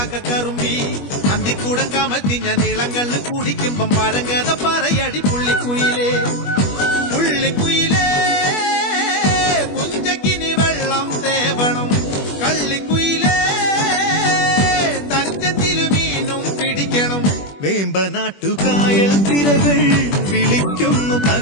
അന്തിക്കൂടം കമത്തി ഞാൻ ഇളങ്കള്ള് കുടിക്കുമ്പം പഴങ്കഥ പറയടി പുള്ളിക്കുയിലേ പുള്ളിക്കുയിലേ പുഞ്ചക്കിനി വെള്ളം തേവണം കള്ളിക്കുയിലേ തഞ്ചത്തില് മീനും പിടിക്കണം വേമ്പനാട്ടുകായൽ തിരകൾ വിളിക്കുന്നു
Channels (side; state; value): right; late; 21 ms